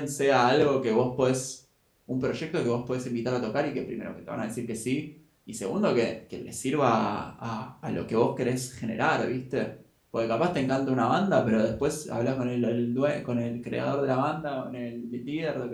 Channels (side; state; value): both; identical; correlation 1.00